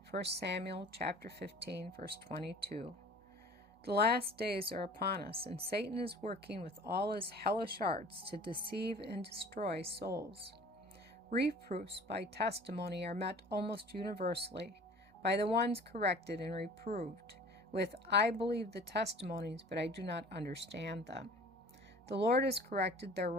1 Samuel chapter 15, verse 22. The last days are upon us, and Satan is working with all his hellish arts to deceive and destroy souls. Reproofs by testimony are met almost universally by the ones corrected and reproved with, "I believe the testimonies, but I do not understand them." The Lord has corrected their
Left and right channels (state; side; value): normal; both; correlation 0.45